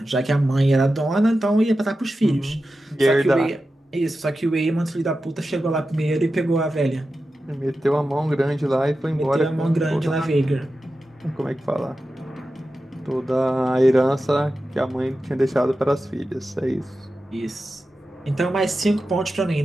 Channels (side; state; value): both; normal; correlation 0.92